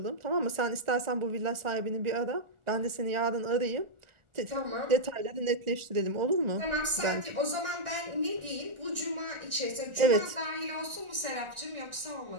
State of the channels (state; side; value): late; left; 1.4 ms